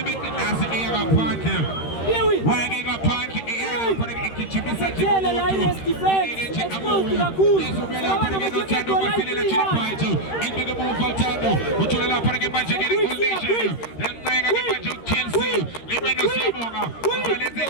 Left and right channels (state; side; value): late; right; 13 ms